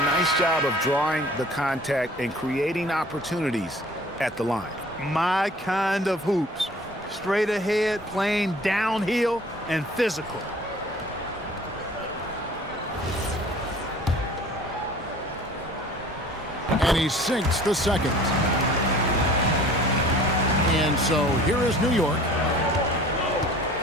nice job of drawing the contact and creating opportunities at the line. My kind of hoops. Straight ahead, playing downhill, and physical. And he sinks the second. And so here is New York.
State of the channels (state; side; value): normal; both; correlation 0.48